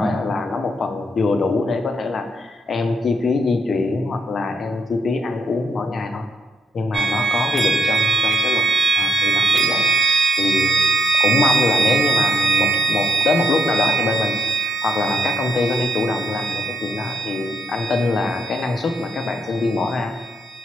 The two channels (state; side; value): normal; both; correlation 0.76